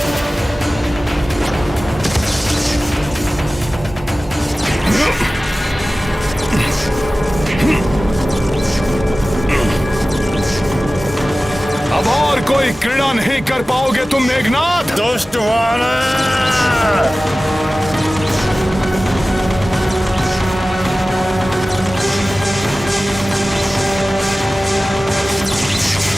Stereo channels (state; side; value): normal; both; correlation 0.96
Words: अब और कोई क्रीड़ा नहीं कर पाओगे तुम मेघनाथ। दुष्ट वानर!